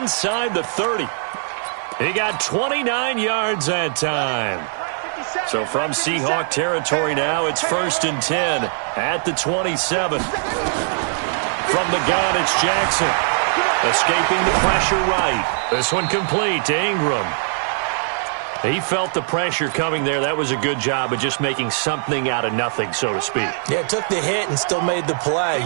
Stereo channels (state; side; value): silent; left; 57 dB below the other